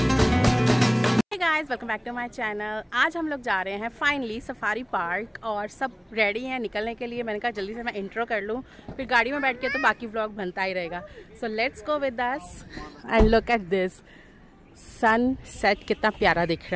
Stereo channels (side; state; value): both; identical; correlation 1.00